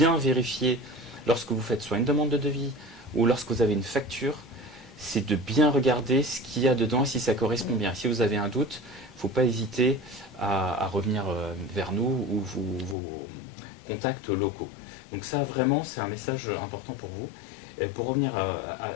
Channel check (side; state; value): right; drops out; at 13.0 s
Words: vérifier lorsque vous faites soit une demande de devis ou lorsque vous avez une facture, c'est de bien regarder ce qu'il y a dedans et si ça correspond bien. Si vous avez un doute, il ne faut pas hésiter à revenir vers nous ou vos contacts locaux. Donc ça vraiment c'est un message important pour vous. Pour revenir